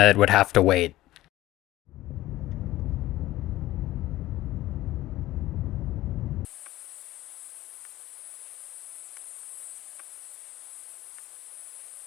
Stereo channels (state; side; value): quieter; right; 16.2 dB